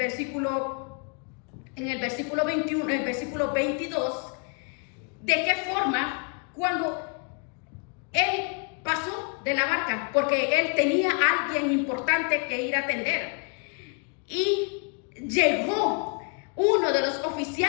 21, el versículo 22, de qué forma cuando él pasó de la barca, porque él tenía a alguien importante que ir a atender, y llegó uno de los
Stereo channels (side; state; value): right; quieter; 37.8 dB